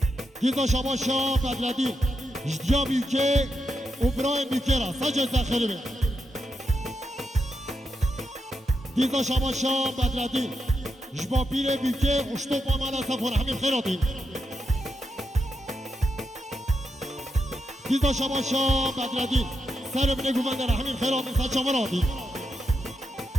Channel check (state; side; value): normal; both; correlation 0.85